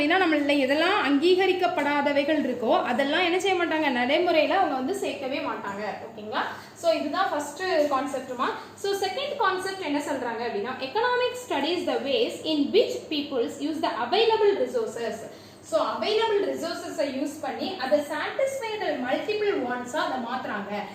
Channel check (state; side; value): identical; both; correlation 1.00